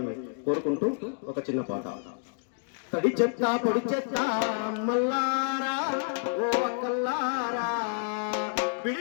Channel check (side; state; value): right; silent; digital silence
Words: కోరుకుంటూ ఒక చిన్న పాట. తడి చెత్త పొడి చెత్త మల్లారా ఓ అక్కల్లారా,